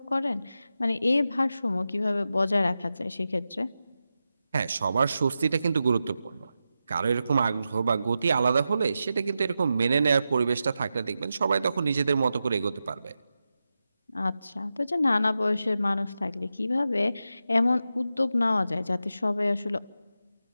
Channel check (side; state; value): both; inverted; correlation -0.90